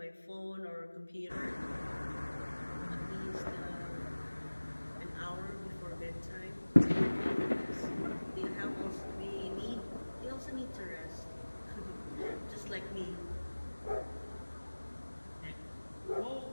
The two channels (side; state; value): both; inverted; correlation -1.00